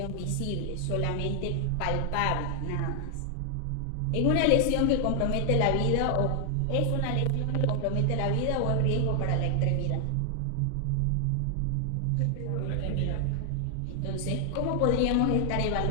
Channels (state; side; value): different; both; correlation 0.00